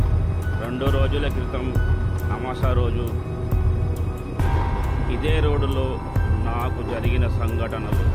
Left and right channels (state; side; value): identical; both; correlation 1.00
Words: 2 రోజుల క్రితం అమాసా రోజు ఇదే రోడ్డులో నాకు జరిగిన సంఘటనలు.